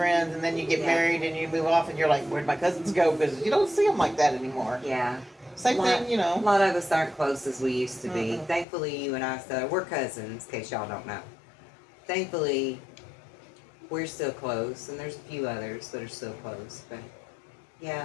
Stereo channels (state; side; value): drops out; right; at 8.7 s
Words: and then you get Yeah. married and you move off and you're like, where'd my cousins go? Because you don't see them like that anymore. Yeah. Same thing, A lot of us aren't close as we used to be. Mm-mm. Thankfully, you and I, we're cousins, in case y'all don't know. Thankfully, we're still close, and there's a few others that are still close. But, yeah,